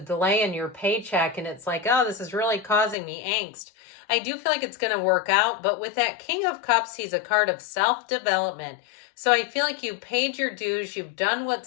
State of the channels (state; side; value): drops out; right; at 3.0 s